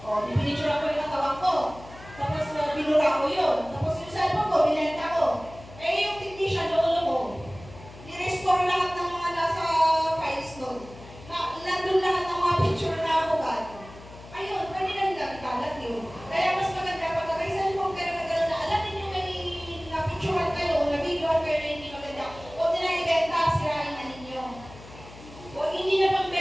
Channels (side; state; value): left; noise; hum, 18 dB below the sound